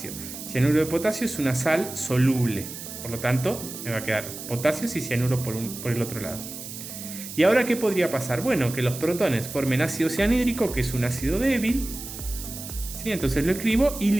Cianuro de potasio es una sal soluble. Por lo tanto, me va a quedar potasios y cianuro por el otro lado. ¿Y ahora qué podría pasar? Bueno, que los protones formen ácido cianhídrico, que es un ácido débil. ¿Sí? Entonces lo escribo y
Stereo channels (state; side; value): noise; right; hiss, 10 dB below the sound